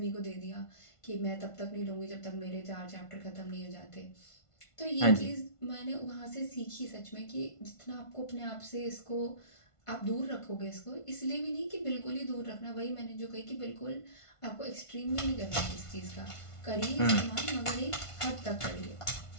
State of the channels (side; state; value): right; late; 1.5 ms